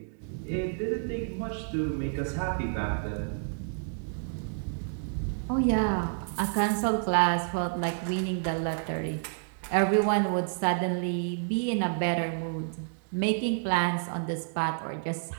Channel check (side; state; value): left; silent; digital silence